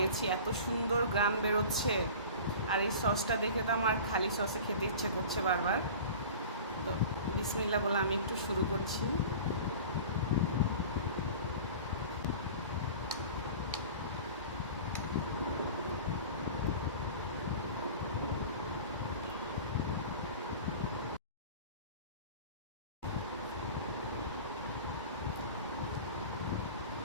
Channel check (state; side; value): inverted; both; correlation -0.38